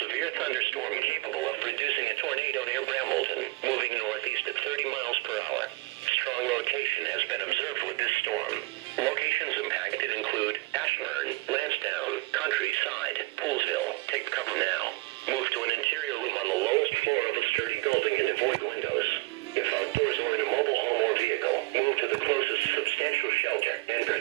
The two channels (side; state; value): left; quieter; 22.3 dB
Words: thunderstorm capable of producing a tornado near Brambleton, moving northeast at 30 miles per hour. Strong rotation has been observed with this storm. Locations impacted include Ashburn, Lansdowne, Countryside, Poolsville. Take cover now. Move to an interior room on the lowest floor of a sturdy building and avoid windows. If outdoors or in a mobile home or vehicle, move to the closest substantial shelter and